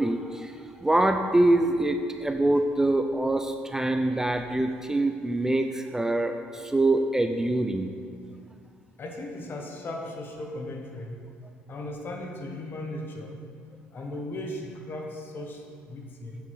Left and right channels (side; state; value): both; normal; correlation 0.89